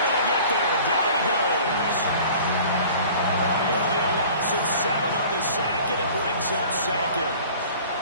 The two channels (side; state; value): both; inverted; correlation -0.46